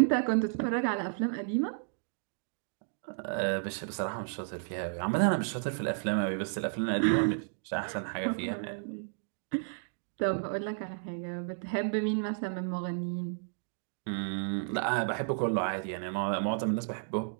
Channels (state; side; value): silent; left; digital silence